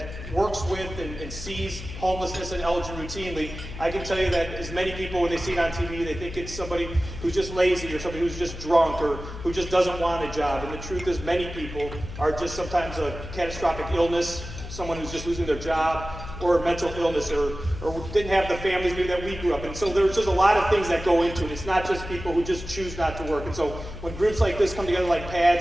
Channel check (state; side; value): noise; left; hum, 11 dB below the sound